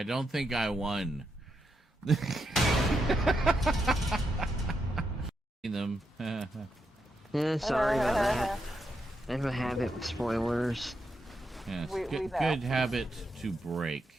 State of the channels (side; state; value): both; normal; correlation 0.83